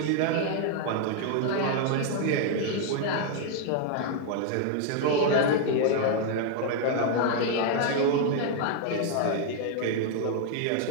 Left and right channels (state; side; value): different; both; correlation 0.00